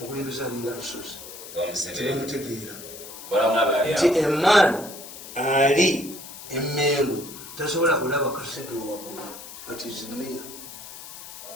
linga lusozi tebamutegeera nti emman ali emmeelu tasobola kulaba kasedo waggulu but is near.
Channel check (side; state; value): left; noise; hiss, 13 dB below the sound